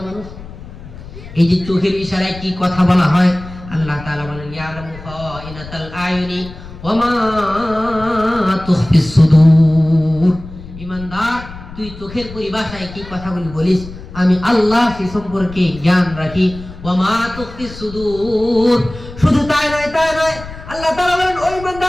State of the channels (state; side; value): noise; left; rumble, 15 dB below the sound